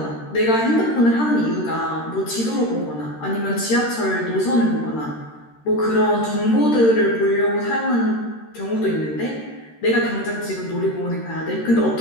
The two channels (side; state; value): right; late; 13 ms